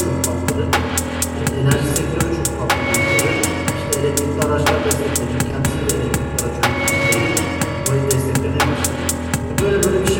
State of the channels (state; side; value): identical; both; correlation 1.00